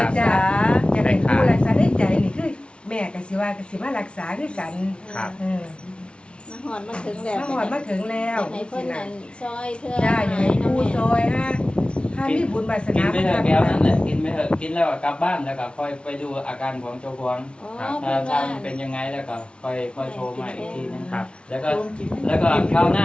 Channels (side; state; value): right; late; 0.058 ms